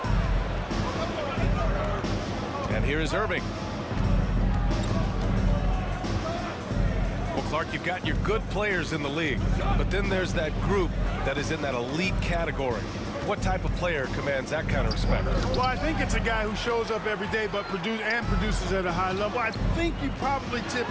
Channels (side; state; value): both; identical; correlation 1.00